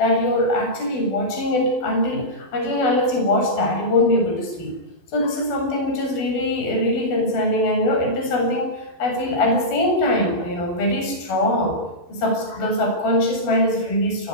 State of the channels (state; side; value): late; right; 12 ms